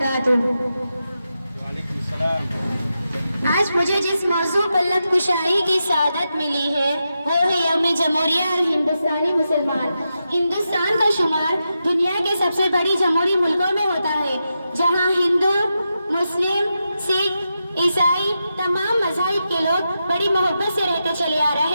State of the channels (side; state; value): both; inverted; correlation -0.88